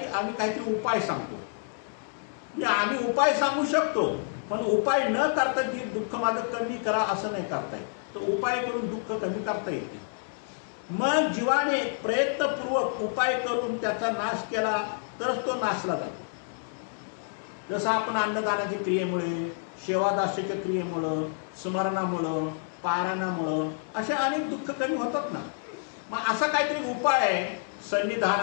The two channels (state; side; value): silent; right; digital silence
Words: आम्ही काहीतरी उपाय सांगतो. म्हणजे आम्ही उपाय सांगू शकतो पण उपाय न करता जे दुःख माझं कमी करा असं नाही करता येत. तर उपाय करून दुःख कमी करता येते. मग जीवाने प्रयत्नपूर्वक उपाय करून त्याचा नाश केला तरच तो नाशला जातो. जसं आपण अन्नदानाच्या क्रियेमुळे, सेवादासाच्या क्रियेमुळं, स्मरणामुळं, पारायणामुळं असे अनेक दुःख कमी होतात ना. मग असा काहीतरी उपाय आहे